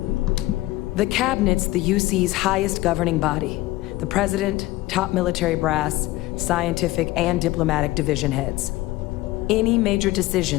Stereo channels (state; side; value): quieter; right; 18.5 dB